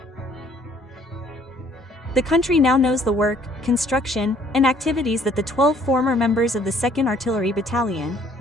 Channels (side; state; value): both; normal; correlation 0.61